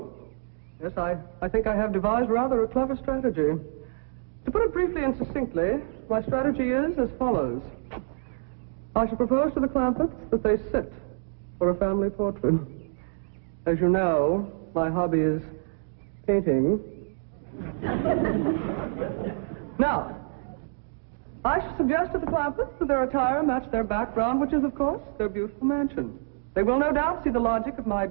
Yes, I think I have devised rather a clever strategy. To put it briefly and succinctly, my strategy is as follows. I shall propose to the Clampetts that they sit for a family portrait. As you know, my hobby is painting. Now, I shall suggest to the Clampetts that their attire match their background, which is, of course, their beautiful mansion. They will no doubt see the logic of my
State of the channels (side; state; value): left; silent; digital silence